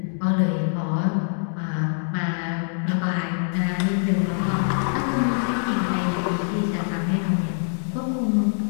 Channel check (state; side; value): silent; right; digital silence